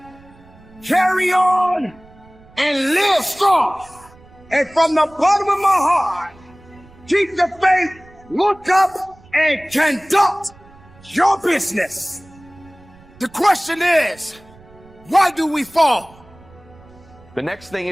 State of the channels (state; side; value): noise; right; rumble, 25 dB below the sound